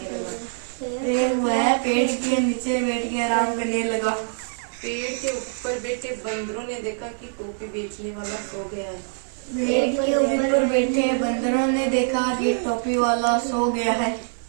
लगा। वह पेड़ के नीचे बैठ के आराम करने लगा। पेड़ के ऊपर बैठे बंदरों ने देखा कि टोपी बेचने वाला सो गया है। पेड़ के ऊपर बैठे बंदरों ने देखा कि टोपी वाला सो गया है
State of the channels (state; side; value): silent; left; digital silence